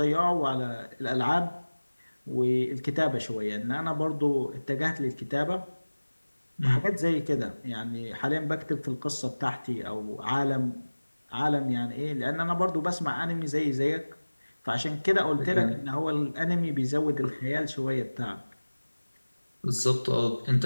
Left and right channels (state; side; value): inverted; both; correlation -1.00